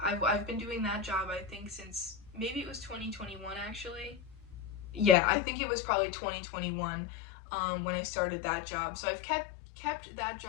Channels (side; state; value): right; drops out; at 5.2 s